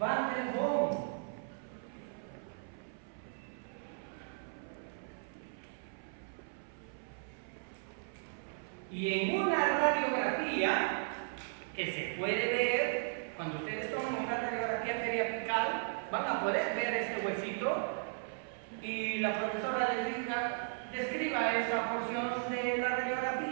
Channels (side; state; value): left; silent; 54 dB below the other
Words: der Boom. Y en una radiografía que se puede ver, cuando ustedes toman una radiografía periapical, van a poder ver este huesito y la profesora les diga, describa esa porción de la